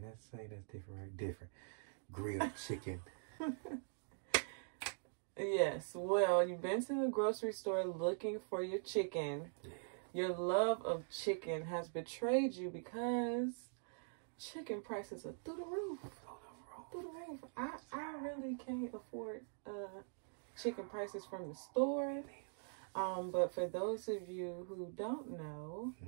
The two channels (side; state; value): left; silent; digital silence